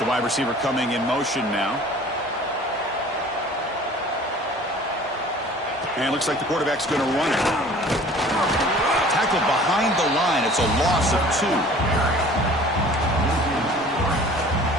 wide receiver coming in motion now. And it looks like the quarterback's going to run it. Tackled behind the line. It's a loss of 2.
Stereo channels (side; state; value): both; normal; correlation 0.47